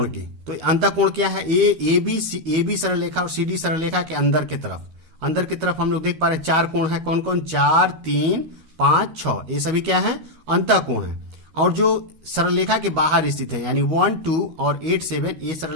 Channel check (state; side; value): late; left; 13 ms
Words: की। तो अंतःकोण क्या है? AB सरलरेखा और CD सरलरेखा के अंदर की तरफ हम लोग देख पा रहे हैं 4 कोण है। कौन कौन? 4, 3, 5, 6, ये सभी क्या है? अंतःकोण है। और जो सरलरेखा के बाहर स्थित है, यानी 1, 2 और 8, 7, ये